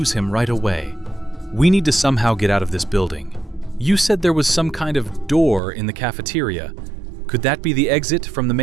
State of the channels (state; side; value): drops out; left; at 5.6 s